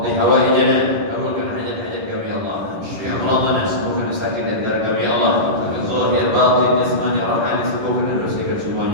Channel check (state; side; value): late; left; 10 ms